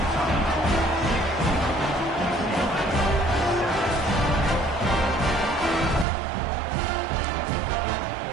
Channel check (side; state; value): left; drops out; at 6.1 s